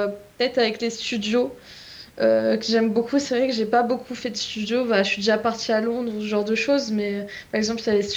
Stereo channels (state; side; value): identical; both; correlation 1.00